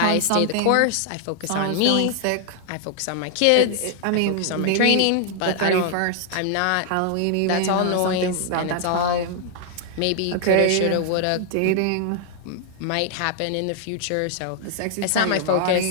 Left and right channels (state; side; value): different; both; correlation 0.00